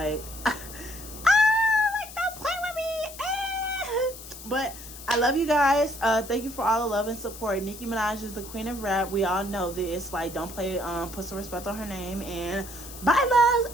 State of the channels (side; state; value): left; noise; hiss, 14 dB below the sound